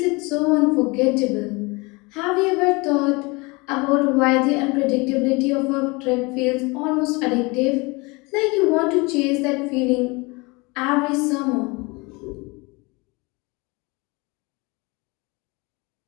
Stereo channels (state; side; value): quieter; right; 26.4 dB